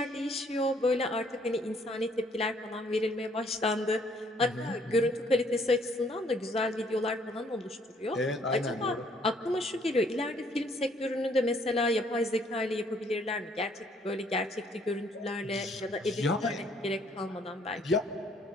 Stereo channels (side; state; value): both; normal; correlation 0.64